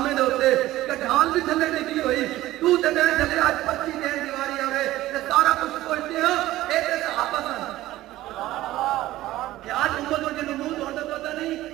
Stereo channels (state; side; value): quieter; left; 15.9 dB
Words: نے ہوتے کہ ڈھال بھی تھلے نہیں کی ہوئی، تو تے میں چلے آج 25 دن دیواری آوے تے سارا کچھ سوچتے ہیں ایک صحابہ سن کہ آج امت اور جنہوں منہ ہوتا پتا